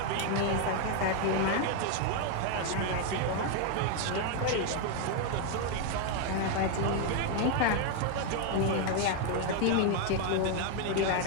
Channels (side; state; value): both; different; correlation 0.01